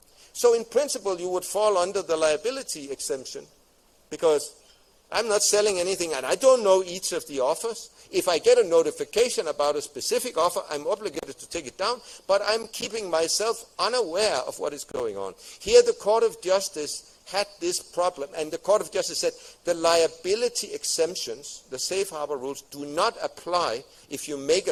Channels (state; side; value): identical; both; correlation 1.00